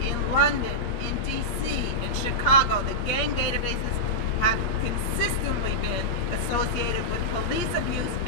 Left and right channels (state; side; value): late; right; 8.6 ms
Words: in London, in DC, in Chicago, the gang databases have consistently been associated with police abuse